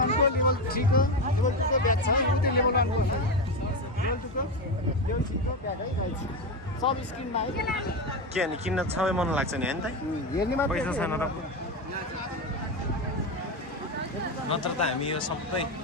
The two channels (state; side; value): normal; both; correlation 0.15